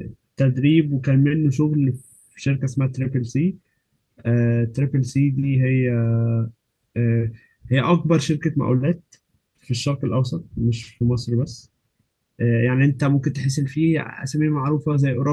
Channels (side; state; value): both; identical; correlation 1.00